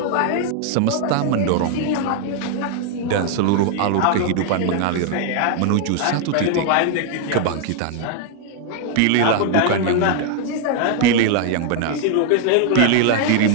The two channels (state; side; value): different; both; correlation 0.00